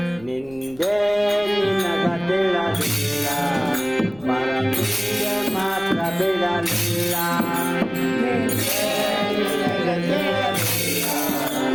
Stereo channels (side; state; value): left; noise; rumble, 24 dB below the sound